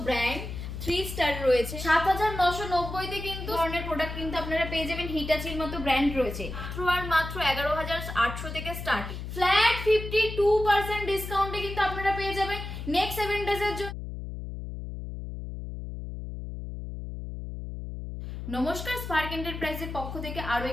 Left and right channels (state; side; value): noise; left; hum, 7 dB below the sound